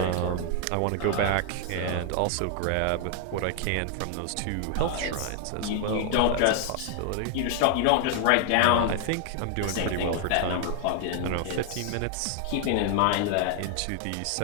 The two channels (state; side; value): different; both; correlation 0.00